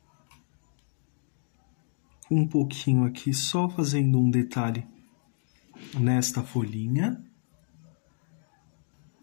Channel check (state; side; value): silent; right; 58 dB below the other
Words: Um pouquinho aqui, só fazendo um detalhe nesta folhinha.